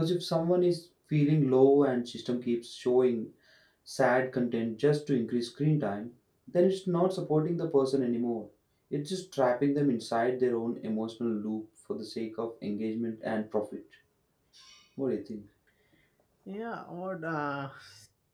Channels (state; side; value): identical; both; correlation 1.00